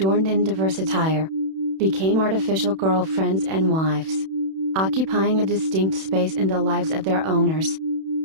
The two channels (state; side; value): late; left; 31 ms